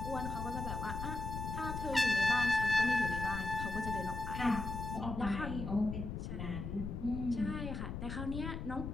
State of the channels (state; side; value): noise; left; rumble, 5 dB below the sound